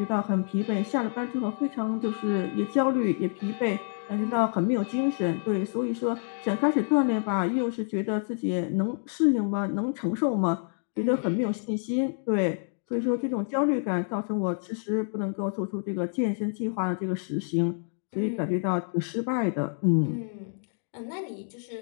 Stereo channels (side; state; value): right; silent; 59 dB below the other